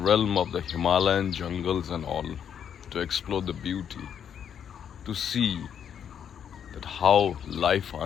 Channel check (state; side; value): quieter; right; 8.5 dB